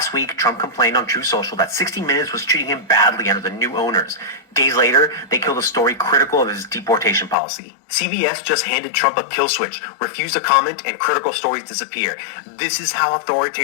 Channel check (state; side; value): drops out; right; at 7.4 s